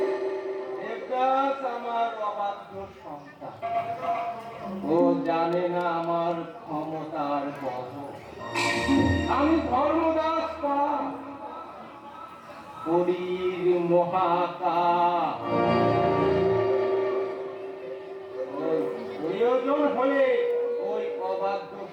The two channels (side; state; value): both; identical; correlation 1.00